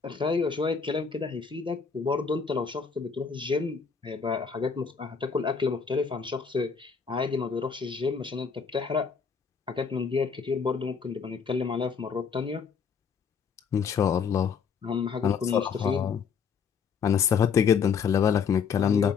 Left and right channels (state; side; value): quieter; right; 6.1 dB